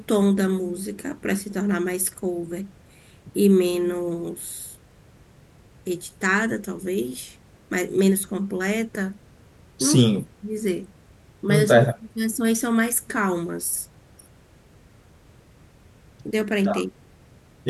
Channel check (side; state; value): both; identical; correlation 1.00